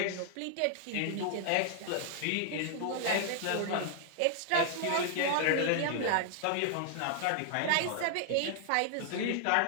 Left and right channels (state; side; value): different; both; correlation 0.00